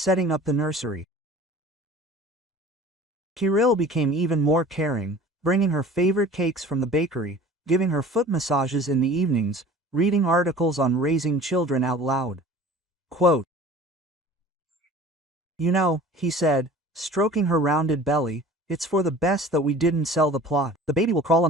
up the nursery. Kirill became even more caring, bringing her favorite cakes from the bakery, giving her foot massages in the evenings, reading articles on raising children out loud. Quote, "You know," he said, stroking her rounded belly, "it's for the best that we didn't sell the plot. The baby will crawl on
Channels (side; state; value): both; normal; correlation 0.44